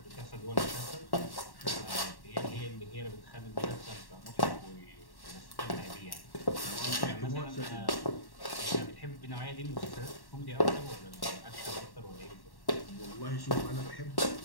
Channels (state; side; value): late; right; 1.1 ms